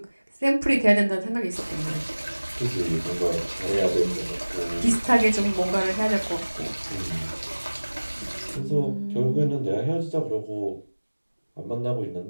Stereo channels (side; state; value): both; inverted; correlation -1.00